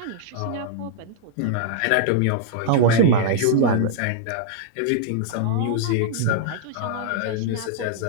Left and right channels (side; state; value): both; different; correlation -0.01